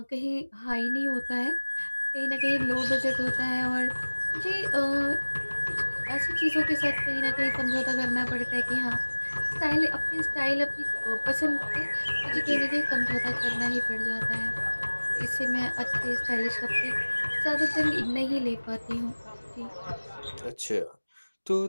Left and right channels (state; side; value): inverted; both; correlation -1.00